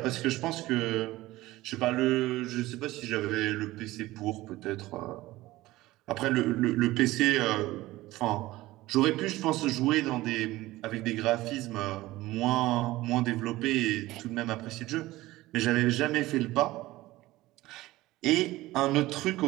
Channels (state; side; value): quieter; left; 17.9 dB